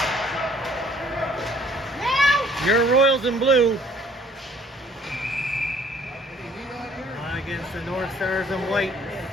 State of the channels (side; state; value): both; normal; correlation 0.58